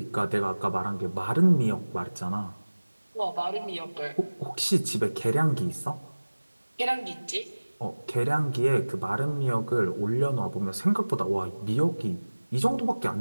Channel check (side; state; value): both; inverted; correlation -1.00